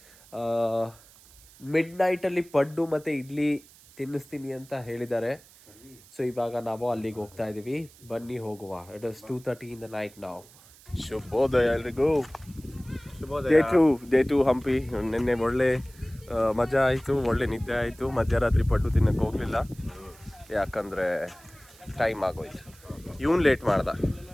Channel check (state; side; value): noise; right; hiss, 24 dB below the sound